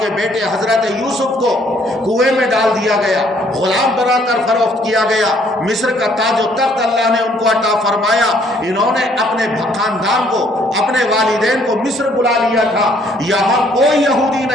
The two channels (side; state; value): both; normal; correlation 0.64